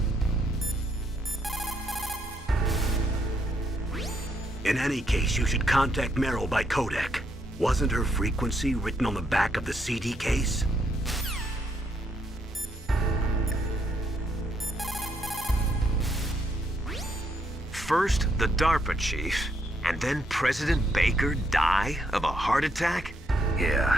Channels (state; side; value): normal; both; correlation 0.75